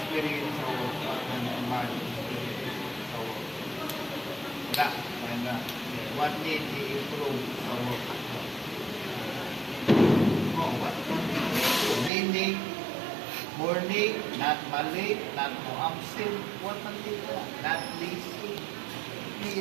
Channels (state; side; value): drops out; left; at 12.1 s